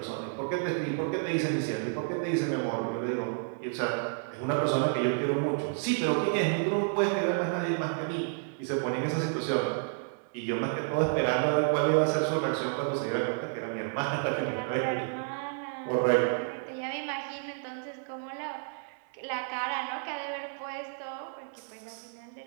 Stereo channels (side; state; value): left; silent; digital silence